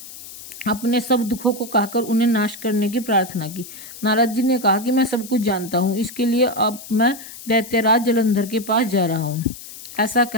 अपने सब दुखों को कहकर उन्हें नाश करने की प्रार्थना की। नारद जी ने कहा कि मैं सब कुछ जानता हूँ, इसके लिए अब मैं दैत्यराज जलंधर के पास जा रहा हूँ। ऐसा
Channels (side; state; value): left; noise; hiss, 15 dB below the sound